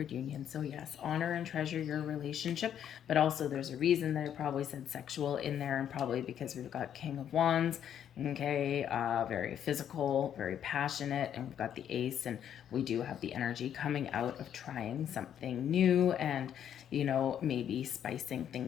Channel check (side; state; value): right; quieter; 9.5 dB